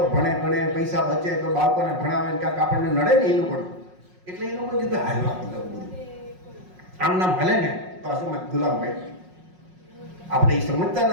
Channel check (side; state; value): left; late; 5.5 ms